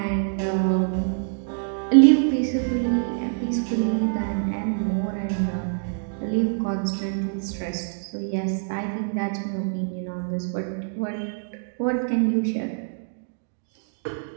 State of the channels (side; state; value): left; silent; digital silence